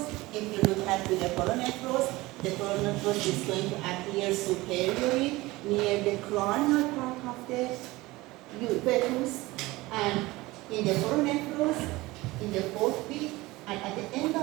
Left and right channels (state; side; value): quieter; left; 20.2 dB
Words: If you look at to the coronephros is going to appear superiorly near the cranial part of the fetus, and in the coronephros, in the 4th feet, and at the end